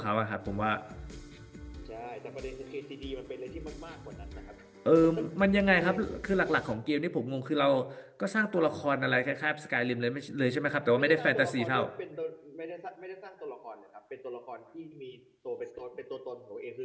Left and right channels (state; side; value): identical; both; correlation 1.00